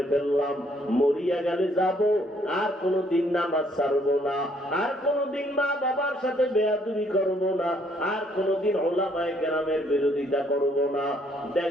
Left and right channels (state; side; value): normal; both; correlation 0.67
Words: ফেললাম, মরিয়া গেলে যাব, আর কোনদিন নামাজ ছাড়বো না, আর কোনদিন মা বাবার সাথে বেয়াদবি করব না, আর কোনদিন ওলামায়ে কেরামের বিরোধিতা করব না,